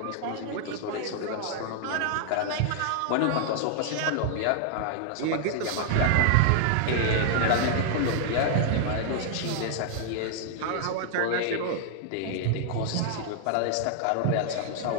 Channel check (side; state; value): both; different; correlation 0.00